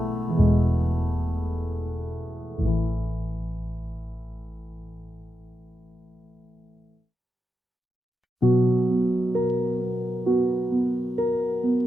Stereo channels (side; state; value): both; normal; correlation 0.89